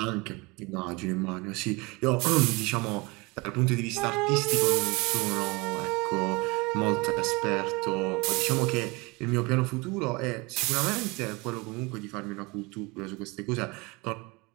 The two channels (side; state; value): left; quieter; 25.7 dB